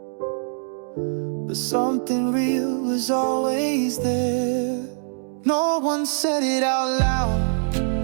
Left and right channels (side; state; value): left; silent; digital silence